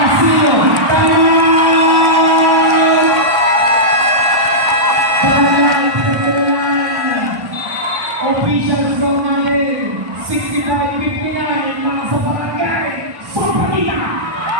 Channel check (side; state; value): left; late; 1.1 ms